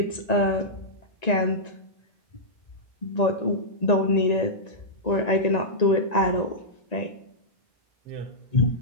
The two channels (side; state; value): right; late; 1.9 ms